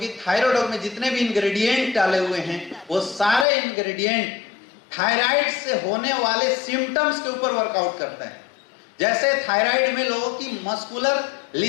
थायरोडॉग में जितने भी इंग्रेडिएंट डाले हुए हैं वो सारे इंग्रेडिएंट थायराइड से होने वाले सिम्टम्स के ऊपर वर्कआउट करता है। जैसे थायराइड में लोगों की मस्कुलर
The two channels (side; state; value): right; drops out; at 3.5 s